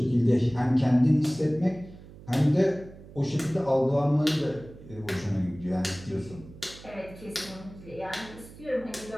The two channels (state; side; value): noise; right; hum, 18 dB below the sound